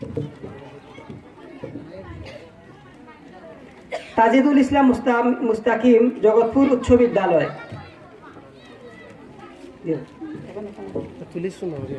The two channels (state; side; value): identical; both; correlation 1.00